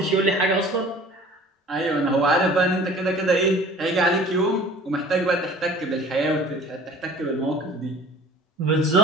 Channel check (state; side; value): normal; both; correlation 0.46